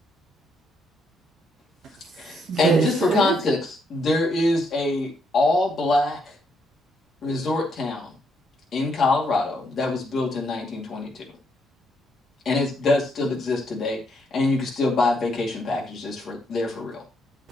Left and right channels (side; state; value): both; normal; correlation 0.75